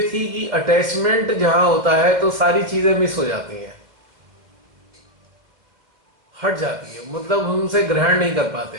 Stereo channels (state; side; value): late; left; 2.1 ms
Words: थी कि अटैचमेंट जहां होता है तो सारी चीजें मिस हो जाती हैं, हट जाती है, मतलब हम उनसे ग्रहण नहीं कर